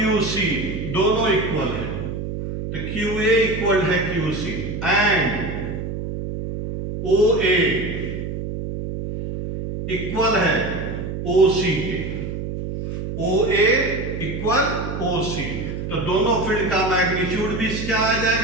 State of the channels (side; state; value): right; noise; hum, 5 dB below the sound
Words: सी दोनों इक्वल है, तो क्यू ए इक्वल है Q C and O A equal है ओ सी के। ओ ए इक्वल ओ सी, तो दोनों फील्ड का मैग्नीट्यूड भी क्या आ